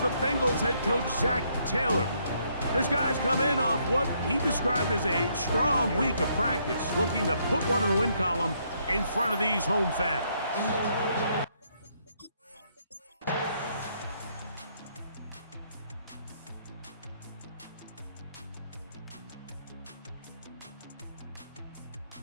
Bengals head coach, Zach Taylor. His guys come in off what he described as a strong week of practice, looking to put one in the win column in front of these home fans.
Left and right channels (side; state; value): both; inverted; correlation -0.72